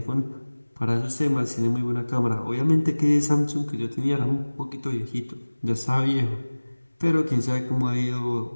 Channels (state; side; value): inverted; both; correlation -1.00